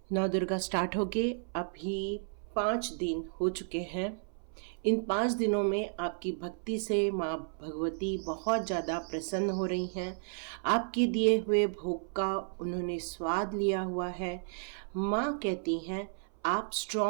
नौ दुर्गा स्टार्ट हो गए। अभी 5 दिन हो चुके हैं। इन 5 दिनों में आपकी भक्ति से माँ भगवती बहुत ज़्यादा प्रसन्न हो रही हैं। आपके दिए हुए भोग का उन्होंने स्वाद लिया हुआ है। माँ कहती हैं आप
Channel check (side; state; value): left; silent; 56 dB below the other